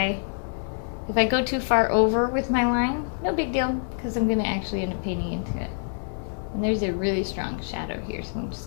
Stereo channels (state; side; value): silent; right; digital silence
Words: go too far over with my line. No big deal, because I'm going to actually end up painting into it. And there's a really strong shadow here, so I'm